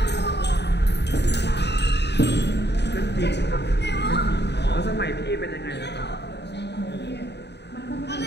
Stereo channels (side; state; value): right; late; 0.50 ms